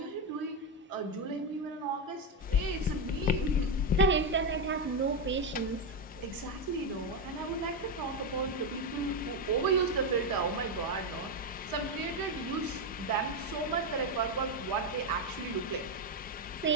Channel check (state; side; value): normal; both; correlation 0.08